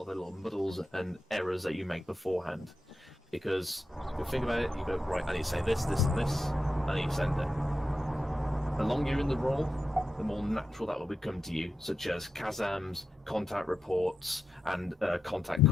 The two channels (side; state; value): both; normal; correlation 0.88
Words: of the little muddles and errors that you make beforehand. Because you think about it, you go, right, I need to say this, this, and this, I need to send it. The longer you're in the role, the more natural that will become to you, such as Kazams, contact reports, and contact